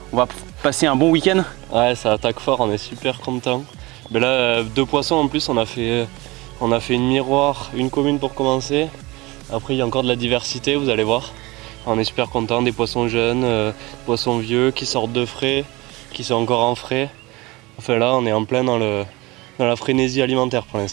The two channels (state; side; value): quieter; left; 22.5 dB